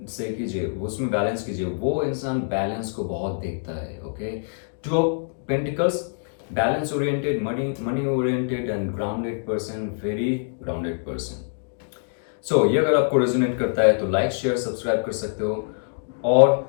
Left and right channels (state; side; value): silent; right; digital silence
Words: सही कीजिए, उसमें बैलेंस कीजिए। वो इंसान बैलेंस को बहुत देखता है। Okay, 2 of pentacles, balance oriented, money oriented and grounded person, very grounded person. So ये अगर आपको रेजोनेट करता है तो लाइक शेयर सब्सक्राइब कर सकते हो।